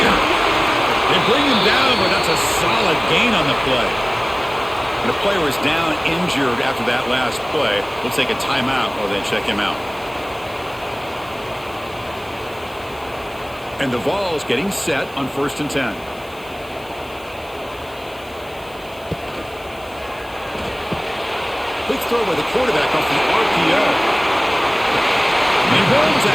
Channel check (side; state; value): left; noise; hiss, 24 dB below the sound